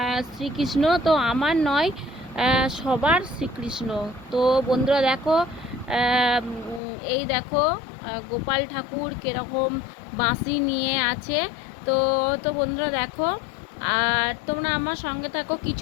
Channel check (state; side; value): drops out; right; at 6.8 s